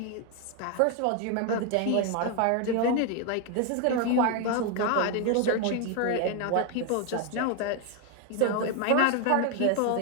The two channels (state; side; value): different; both; correlation 0.01